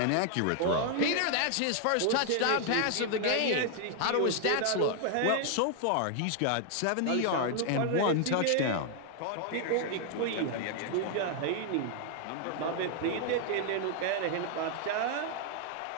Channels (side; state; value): both; different; correlation 0.00